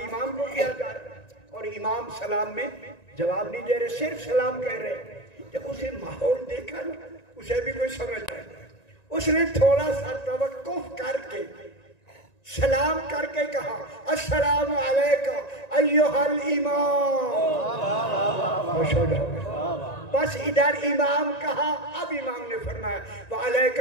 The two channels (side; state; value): right; late; 1.9 ms